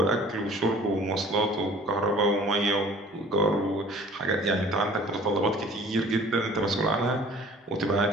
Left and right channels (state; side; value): normal; both; correlation 0.49